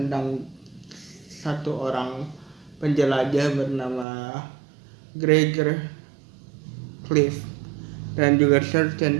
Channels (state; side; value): drops out; left; at 4.0 s